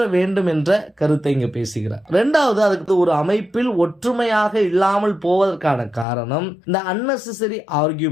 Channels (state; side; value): drops out; right; at 6.1 s